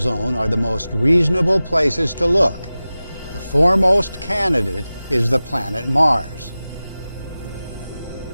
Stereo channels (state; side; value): inverted; both; correlation -0.96